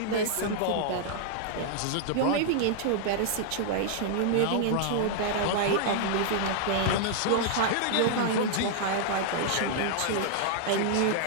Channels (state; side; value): different; both; correlation -0.01